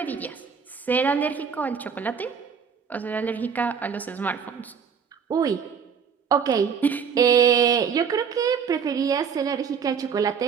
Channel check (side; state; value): left; quieter; 6.7 dB